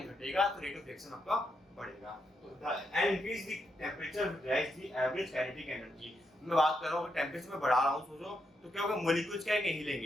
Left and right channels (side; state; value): both; normal; correlation 0.81